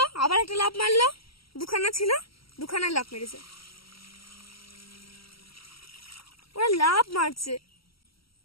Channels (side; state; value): right; late; 0.75 ms